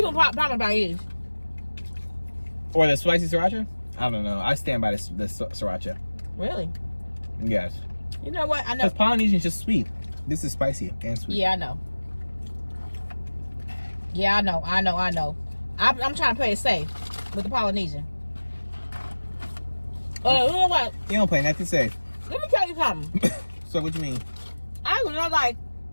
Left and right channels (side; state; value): both; inverted; correlation -1.00